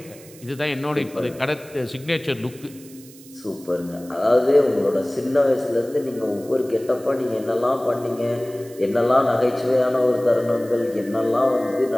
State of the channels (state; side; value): noise; right; hiss, 21 dB below the sound